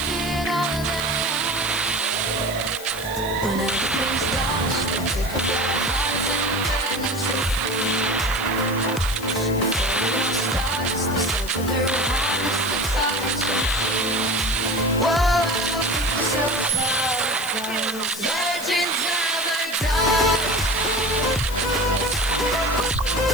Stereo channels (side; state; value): left; noise; hiss, 12 dB below the sound